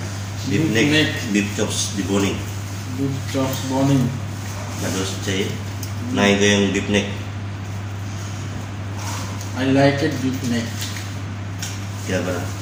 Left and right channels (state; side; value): identical; both; correlation 1.00